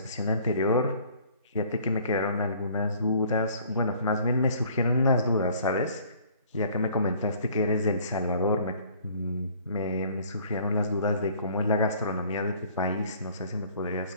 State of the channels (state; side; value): inverted; both; correlation -0.56